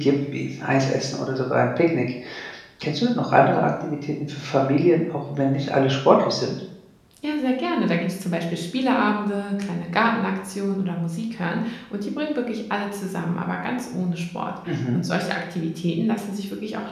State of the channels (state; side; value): identical; both; correlation 1.00